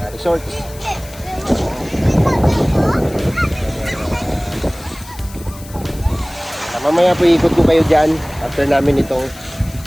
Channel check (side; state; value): left; noise; hiss, 19 dB below the sound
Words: resort. Mamaya po ikot ko kayo dyan after namin itong